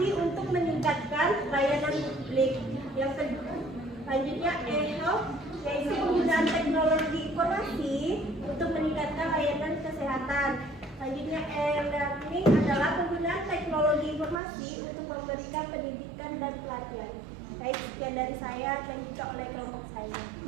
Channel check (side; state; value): left; drops out; at 14.4 s